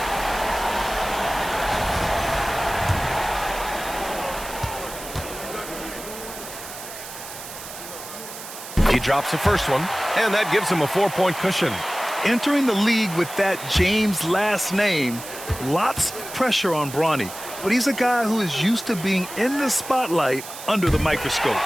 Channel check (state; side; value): noise; right; hiss, 12 dB below the sound